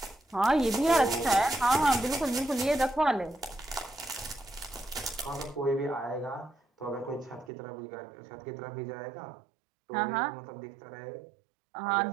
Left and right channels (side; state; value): left; drops out; at 7.5 s